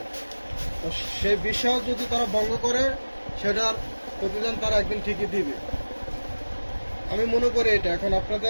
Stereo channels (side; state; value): both; inverted; correlation -1.00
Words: তো সেই বিশ্বাস যদি তারা ভঙ্গ করে, সেটার প্রতিদান তারা একদিন ঠিকই দিবে। আমি মনে করি এটা। এখন